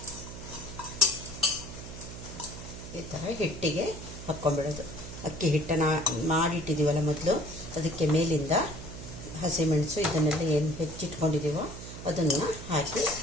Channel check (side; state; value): right; noise; hum, 11 dB below the sound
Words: ಈ ಥರ ಹಿಟ್ಟಿಗೆ ಹಾಕ್ಕೊಂಬಿಡೋದು. ಅಕ್ಕಿ ಹಿಟ್ಟನ್ನು ಮಾಡಿಟ್ಟಿದ್ದೀವಲ್ಲ ಮೊದಲು, ಅದಕ್ಕೆ ಮೇಲಿಂದ ಹಸಿಮೆಣಸು ಇದನ್ನೆಲ್ಲ ಏನು ಹೆಚ್ಚಿಟ್ಕೊಂಡಿದ್ದೀವೋ ಅದನ್ನು ಹಾಕಿ